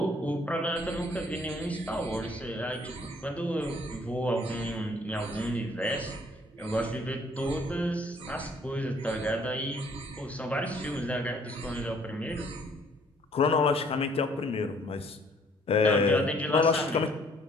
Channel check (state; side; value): normal; both; correlation 0.61